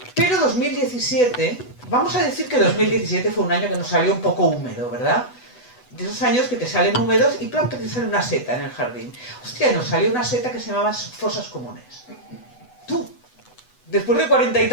Pero 2017, vamos a decir que 2017 fue un año que nos salió un poco húmedo, ¿verdad? De esos años que te salen húmedos y planta te sale una seta en el jardín. Hostia, nos salió una seta que se llamaba fosas comunes. Tú, después de 40 y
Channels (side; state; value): right; late; 8.1 ms